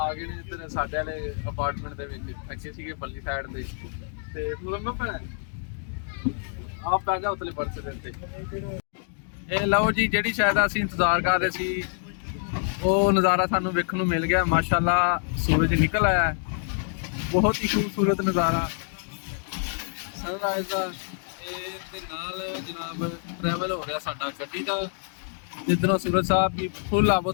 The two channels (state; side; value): silent; right; 60 dB below the other